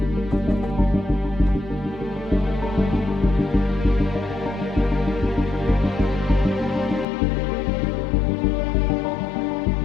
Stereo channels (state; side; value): drops out; right; at 7.1 s